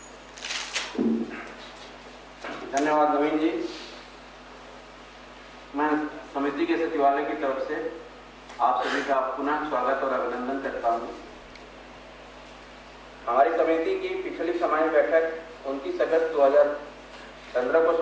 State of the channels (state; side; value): identical; both; correlation 1.00